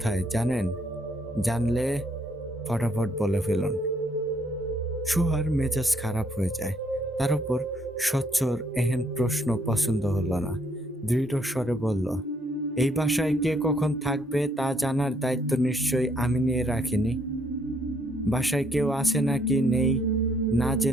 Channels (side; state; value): both; normal; correlation 0.69